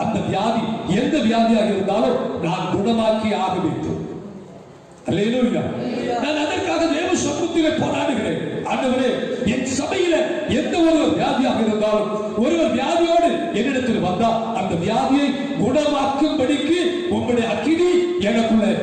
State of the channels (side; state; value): both; identical; correlation 1.00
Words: அந்த வியாதி எந்த வியாதியாக இருந்தாலும் நான் குணமாக்கி ஆக வேண்டும். அல்லேலூயா. நான் அதற்காக தேவ சமூகத்திலே போராடுகிறேன். ஆண்டவரே, என் சபையில எந்த ஒரு வியாதியாக இருந்தாலும் ஒருவர் வியாதியோடு என்னிடத்தில் வந்தா அந்த வியாதியை குணமாக்கும்படிக்கு உங்களுடைய அக்கினி எனக்குள்ள